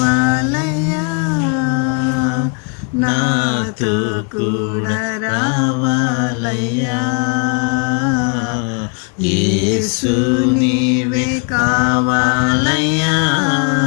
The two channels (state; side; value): quieter; right; 36.4 dB